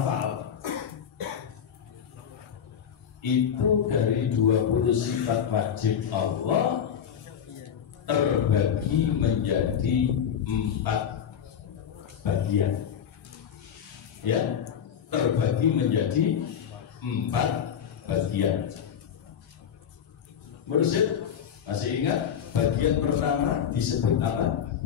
Itu dari 20 sifat wajib Allah terbagi menjadi 4 bagian, ya, terbagi menjadi 4 bagian. Merusit, masih ingat bagian pertama disebut apa?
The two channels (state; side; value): quieter; right; 8.4 dB